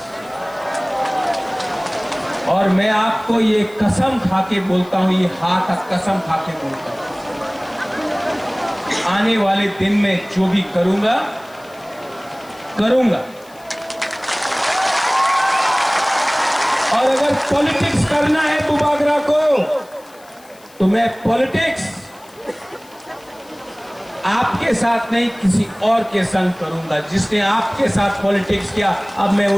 और मैं आपको ये कसम खा के बोलता हूं, ये हाथ कसम खा के बोलता हूं, आने वाले दिन में जो भी करूंगा और अगर पॉलिटिक्स करना है बुबागरा को, तो तो मैं पॉलिटिक्स आपके साथ नहीं किसी और के संग करूंगा। जिसने आपके साथ पॉलिटिक्स किया, अब मैं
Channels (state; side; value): noise; left; hiss, 26 dB below the sound